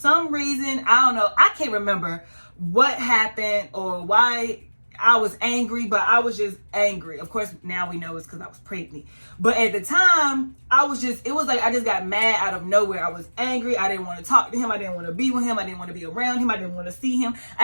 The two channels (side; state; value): both; inverted; correlation -1.00